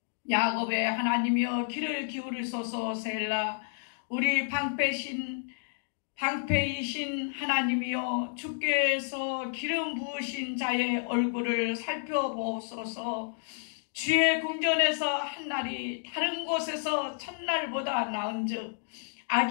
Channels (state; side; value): silent; right; digital silence